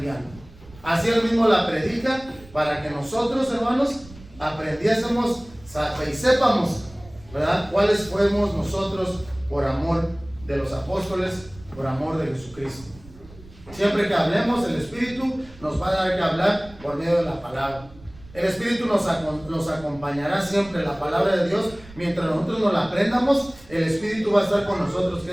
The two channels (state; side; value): noise; right; rumble, 21 dB below the sound